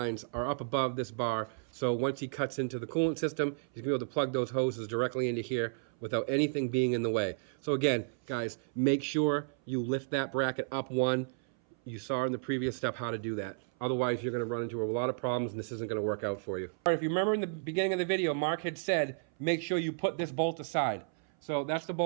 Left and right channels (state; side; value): silent; left; 56 dB below the other